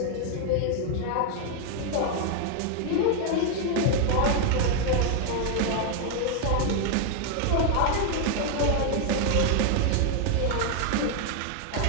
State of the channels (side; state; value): both; different; correlation 0.00